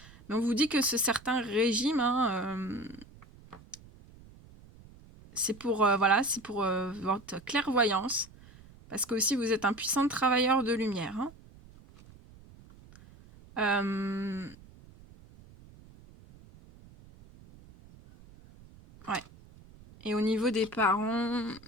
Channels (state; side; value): noise; right; rumble, 22 dB below the sound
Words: Mais on vous dit que ce certain régime, c'est pour, votre clairvoyance. Parce que aussi vous êtes un puissant travailleur de lumière. Ouais. Et au niveau des parents, de